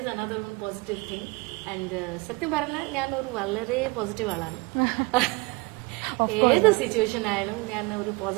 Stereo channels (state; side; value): quieter; left; 25.4 dB